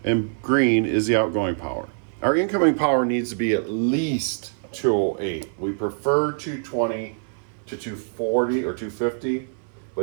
and green is the outgoing power. Our incoming power needs to be at least 208. We prefer 220 to 240 or 250,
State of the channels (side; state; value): left; silent; 57 dB below the other